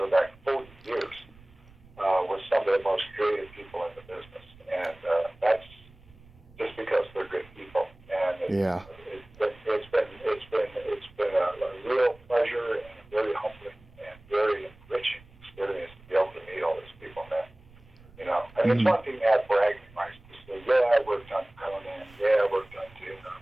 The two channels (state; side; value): noise; right; rumble, 24 dB below the sound